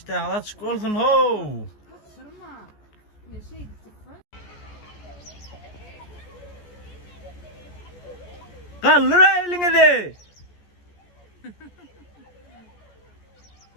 hala çık olsun ho. Kaldır elini de.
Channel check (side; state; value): right; late; 14 ms